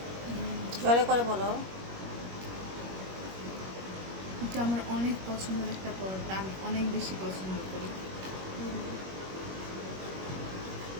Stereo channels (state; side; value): late; left; 21 ms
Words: জোরে করে বলো। এটা আমার অনেক পছন্দের একটা পরোটা, আমি অনেক বেশি পছন্দ করি।